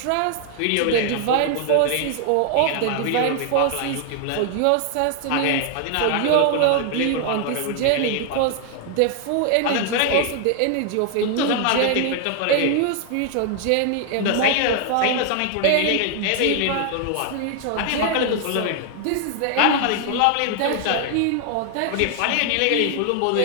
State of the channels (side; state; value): both; different; correlation 0.00